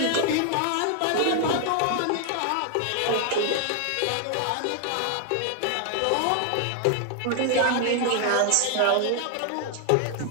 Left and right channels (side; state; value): both; different; correlation 0.00